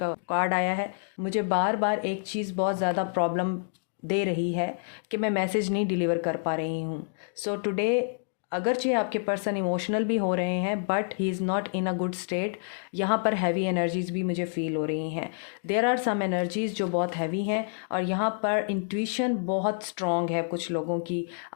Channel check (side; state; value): right; silent; digital silence